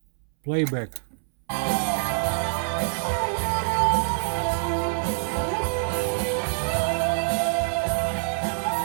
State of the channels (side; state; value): left; silent; 61 dB below the other